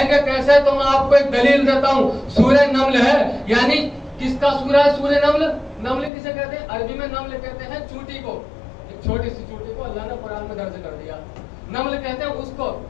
گے کیسے؟ تو میں آپ کو ایک دلیل دیتا ہوں. سورہ نمل ہے، یعنی کس کا سورہ ہے سورہ نمل؟ نمل کسے کہتے ہیں؟ عربی میں نمل کہتے ہیں چونٹی کو، ایک چھوٹی سی چونٹی کو اللہ نے قرآن میں درج کر دیا، نمل کہتے ہیں اس کو.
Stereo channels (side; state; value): right; drops out; at 6.1 s